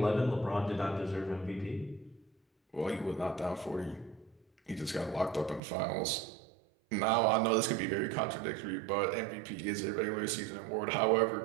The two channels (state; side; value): drops out; left; at 5.6 s